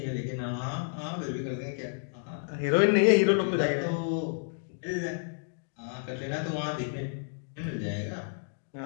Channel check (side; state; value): right; silent; digital silence